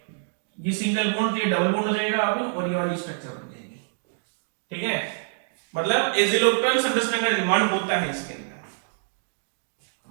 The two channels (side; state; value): left; silent; digital silence